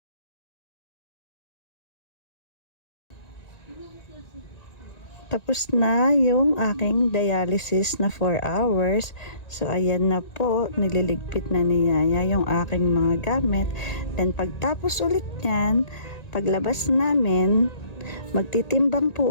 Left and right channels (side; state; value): right; late; 1.9 ms